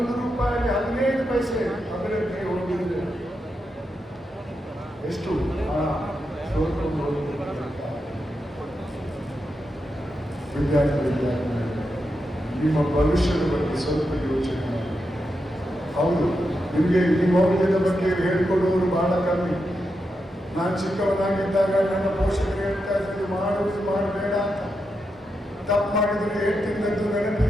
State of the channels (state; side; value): normal; both; correlation 0.86